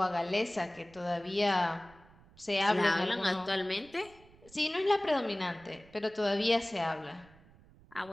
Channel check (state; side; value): noise; right; rumble, 26 dB below the sound